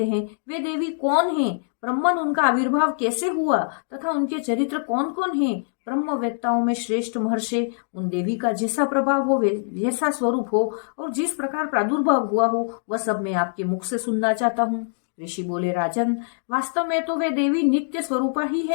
हैं, वे देवी कौन हैं? ब्रह्मन उनका आविर्भाव कैसे हुआ तथा उनके चरित्र कौन कौन हैं? ब्रह्मवेत्ताओं में श्रेष्ठ महर्षि, उन देवी का जैसा प्रभाव हो, जैसा स्वरूप हो और जिस प्रकार प्रादुर्भाव हुआ हो, वह सब मैं आपके मुख से सुनना चाहता हूँ। ऋषि बोले, राजन, वास्तव में तो वे देवी नित्य स्वरूपा ही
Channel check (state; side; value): silent; right; digital silence